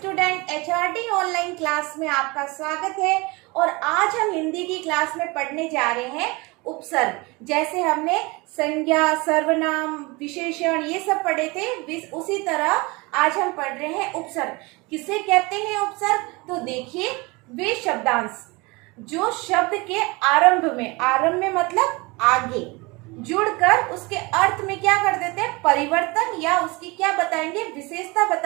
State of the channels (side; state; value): left; quieter; 25.3 dB